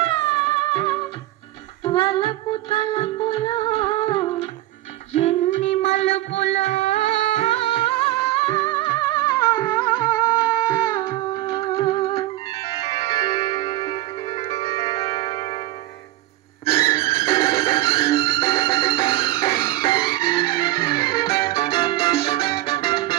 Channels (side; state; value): left; quieter; 16.4 dB